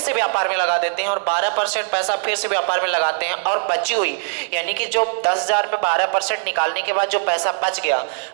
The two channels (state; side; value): silent; left; digital silence